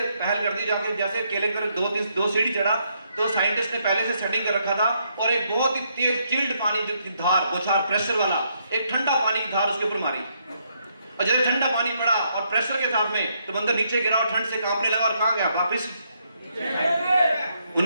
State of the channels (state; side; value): inverted; both; correlation -0.75